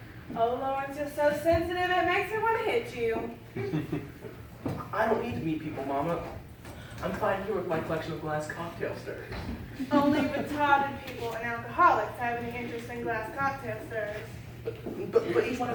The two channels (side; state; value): both; identical; correlation 1.00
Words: Oh, Lawrence, you're so sensitive, it makes me want to hit you. I don't need to meet people, Mama. I'm fine here with my collection of glass cocktail stirrers. Only retarded people and alcoholics have any interest in glass cocktail stirrers. But each one